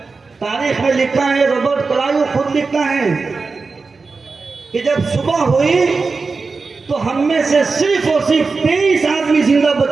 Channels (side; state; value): left; quieter; 4.3 dB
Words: तारीख में लिखा है, रॉबर्ट क्लाइव खुद लिखता है कि जब सुबह हुई तो हम में से सिर्फ और सिर्फ 23 आदमी जिंदा